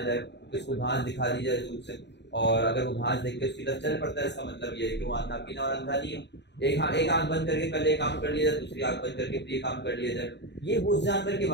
جائے کہ اس کو گھاس دکھا دی جائے دور سے، اور اگر وہ گھاس دیکھ کے اس کی طرف چل پڑتا ہے اس کا مطلب یہ ہے کہ وہ اندھا پینا اور اندھا نہیں ہے. ایک آنکھ بند کر کے پہلے ایک کام کر لیا جائے، دوسری آنکھ بند کر کے پھر یہ کام کر لیا جائے. یہ اس جانور کے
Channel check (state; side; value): late; right; 0.50 ms